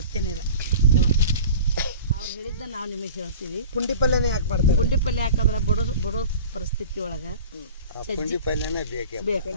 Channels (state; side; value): inverted; both; correlation -0.39